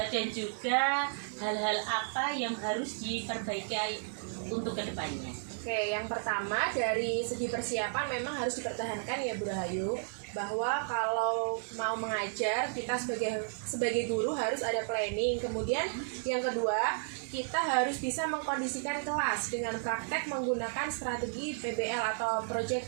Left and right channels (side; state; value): left; silent; digital silence